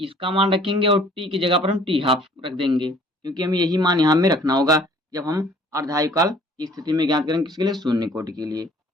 मान रखेंगे और टी की जगह पर हम टी हाफ रख देंगे क्योंकि हमें यही मान यहाँ में रखना होगा जब हम अर्धायुकाल की स्थिति में ज्ञात करेंगे किसके लिए, शून्य कोटि के लिए। तो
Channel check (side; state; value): both; normal; correlation 0.55